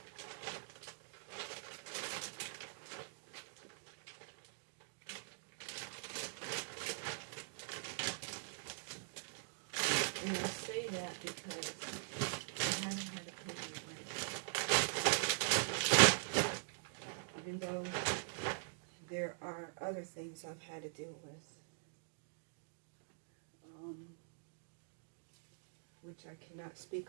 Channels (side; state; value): left; silent; digital silence